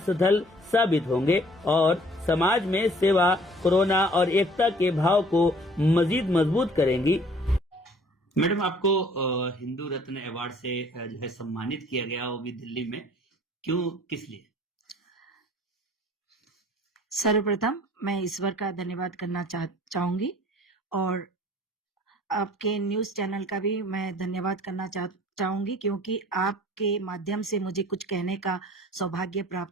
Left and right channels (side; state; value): both; normal; correlation 0.54